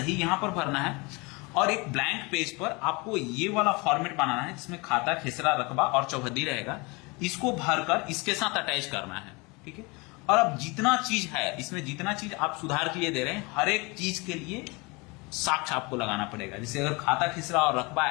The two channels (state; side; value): quieter; right; 27.1 dB